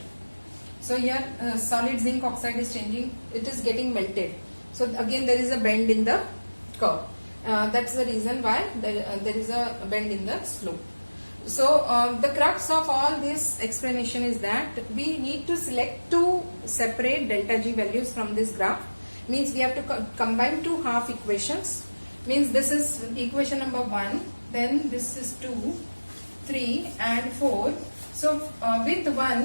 So here solid zinc oxide is changing, it is getting melted. So again there is a bend in the curve. That's the reason why there is a bend in the slope. So the crux of all this explanation is that we need to select two separate delta G values from this graph. Means we have to combine two half equations. Means this is equation number 1, then this is 2, 3 and 4. So with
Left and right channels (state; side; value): inverted; both; correlation -1.00